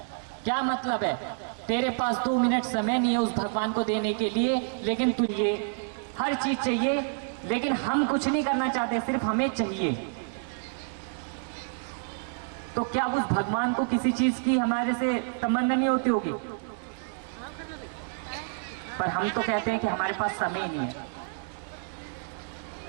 क्या मतलब है? तेरे पास 2 मिनट समय नहीं है उस भगवान को देने के लिए, लेकिन तुझे हर चीज चाहिए, लेकिन हम कुछ नहीं करना चाहते, सिर्फ हमें चाहिए। तो क्या उस भगवान को किसी चीज की हमारे से तमन्ना नहीं होती होगी? पर हम तो कहते हैं कि हमारे पास समय नहीं है।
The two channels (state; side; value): silent; left; 59 dB below the other